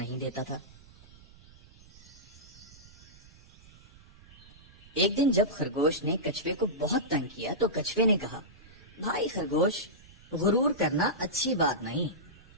دیتا تھا۔ ایک دن جب خرگوش نے کچھوے کو بہت تنگ کیا تو کچھوے نے کہا، بھائی خرگوش، غرور کرنا اچھی بات نہیں،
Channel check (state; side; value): noise; right; rumble, 23 dB below the sound